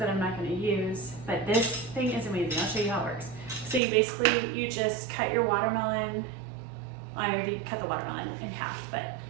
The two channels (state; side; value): drops out; left; at 3.8 s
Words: I'm not going to use, but this thing is amazing. I'll show you how it works. So you just cut your watermelon. I already cut the watermelon in half, but